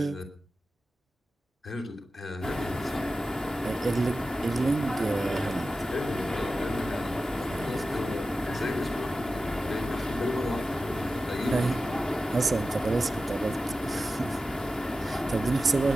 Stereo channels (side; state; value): both; normal; correlation 0.93